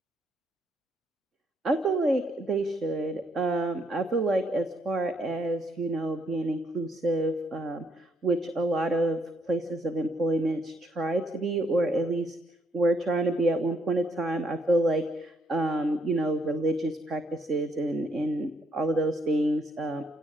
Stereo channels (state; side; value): normal; both; correlation 0.72